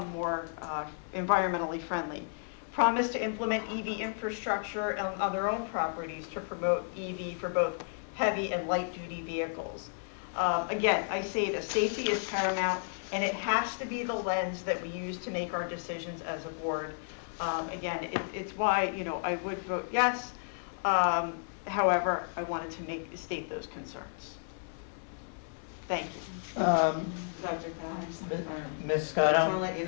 more environmentally friendly. Promise to implement EV infrastructure on their own properties to promote EV for both heavy and light duty vehicles. Again, I say that safety is paramount, and it has to be the lens that we use to make our decisions as a board. Again, it's why I would vote yes. However, I wanted to state those concerns. Thank you. Dr. Ms. I just want Scotto? to let you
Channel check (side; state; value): right; silent; 56 dB below the other